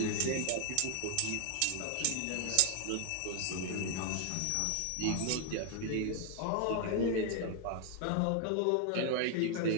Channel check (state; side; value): different; both; correlation 0.00